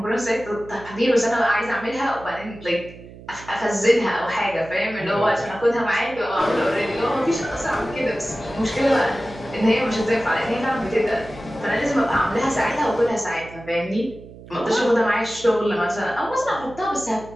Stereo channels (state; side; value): noise; right; hum, 18 dB below the sound